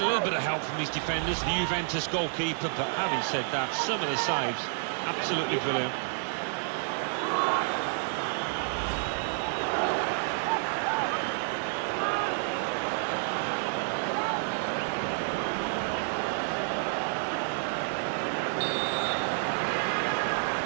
a little bit of help from his defenders, the Juventus goalkeeper, but having said that, some of the saves, absolutely brilliant.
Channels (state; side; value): silent; left; 55 dB below the other